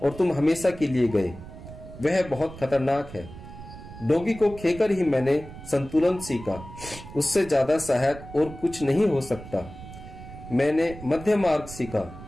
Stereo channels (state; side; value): noise; right; rumble, 15 dB below the sound